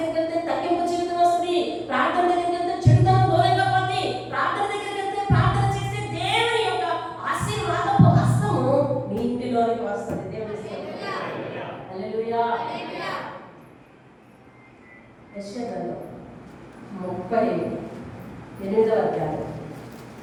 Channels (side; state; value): both; identical; correlation 1.00